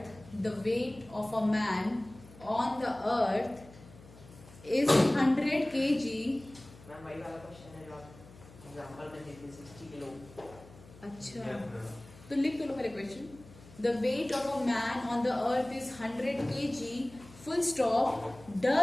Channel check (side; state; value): left; noise; hum, 21 dB below the sound